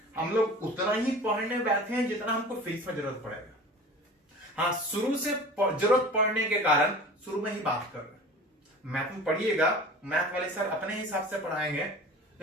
हम लोग उतना ही पढ़ने बैठे हैं जितना हमको फिजिक्स में जरूरत पड़ेगा। हाँ, शुरू से जरूरत पड़ने के कारण शुरू में ही बात कर रहे हैं। मैथ में पढ़िएगा, मैथ वाले सर अपने हिसाब से पढ़ाएंगे,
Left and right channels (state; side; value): normal; both; correlation 0.39